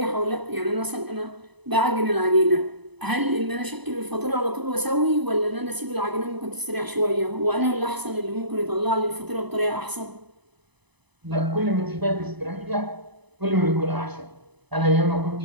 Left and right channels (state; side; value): late; left; 1.0 ms